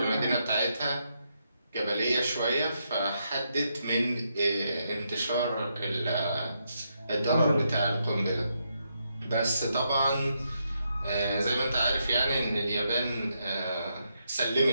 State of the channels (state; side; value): inverted; both; correlation -0.80